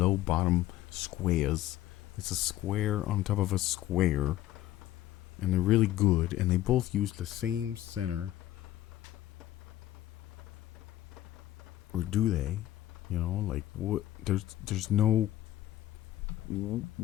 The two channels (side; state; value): right; quieter; 14.2 dB